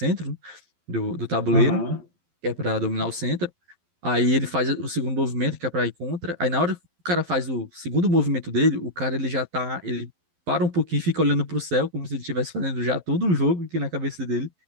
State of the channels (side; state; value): left; late; 12 ms